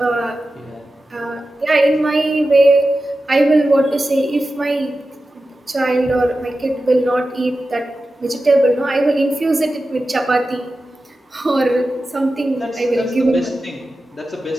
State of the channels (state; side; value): normal; both; correlation 0.93